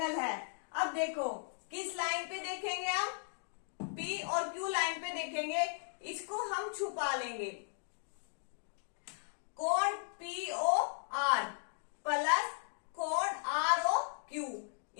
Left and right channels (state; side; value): silent; right; digital silence